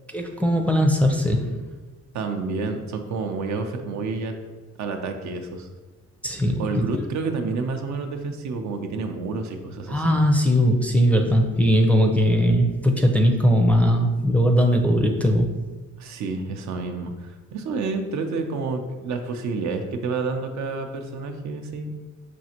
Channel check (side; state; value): both; normal; correlation 0.72